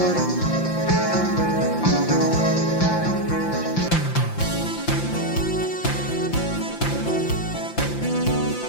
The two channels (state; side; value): late; right; 5.8 ms